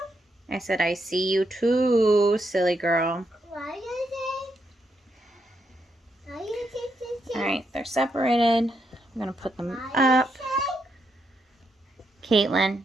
I said I see you too, silly girl. Why you see? Why you see? Alright, they're separated. I'm gonna put them Why up. Caitlin.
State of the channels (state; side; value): normal; both; correlation 0.80